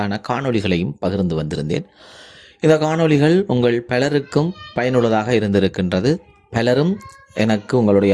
காணொளிகளையும் பகிர்ந்து வந்திருந்தேன். இந்த காணொளிகள் உங்கள் பலருக்கும் பயனுள்ளதாக இருந்திருக்கின்றது. பலரும் எனக்கு உங்களுடைய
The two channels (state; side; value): identical; both; correlation 1.00